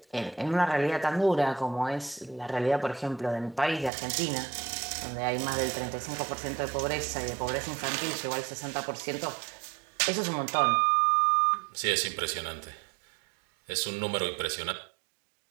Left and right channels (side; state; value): left; drops out; at 3.9 s